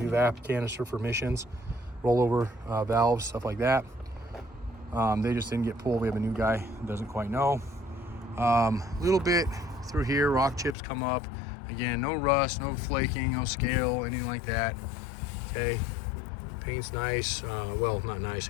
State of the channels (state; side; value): drops out; right; at 10.8 s